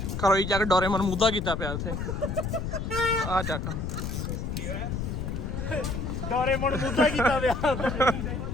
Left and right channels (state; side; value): noise; left; rumble, 3 dB below the sound